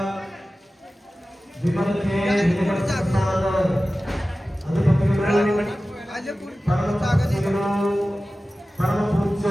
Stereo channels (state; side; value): normal; both; correlation 0.96